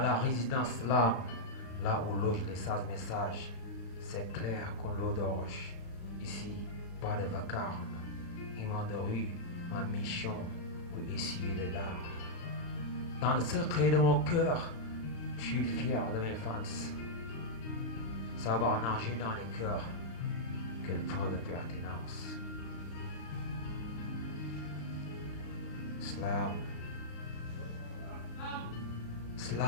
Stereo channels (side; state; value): right; late; 36 ms